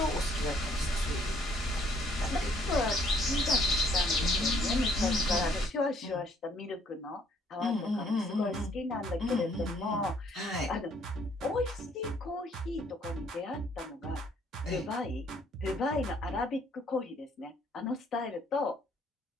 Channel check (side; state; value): both; normal; correlation 0.65